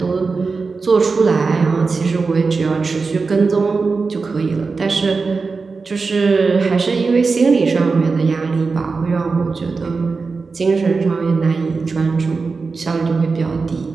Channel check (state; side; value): quieter; left; 4.4 dB